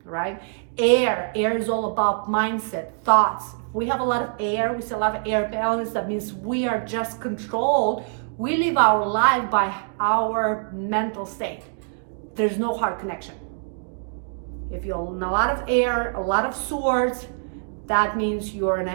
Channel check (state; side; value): silent; left; digital silence